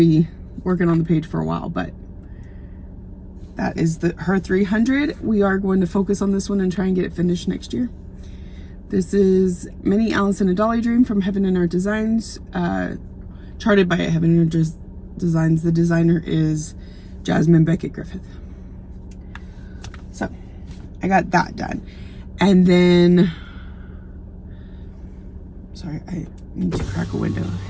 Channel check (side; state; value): both; identical; correlation 1.00